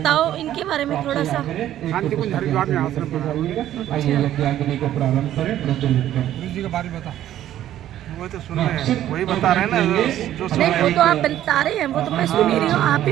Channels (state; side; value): quieter; left; 12.3 dB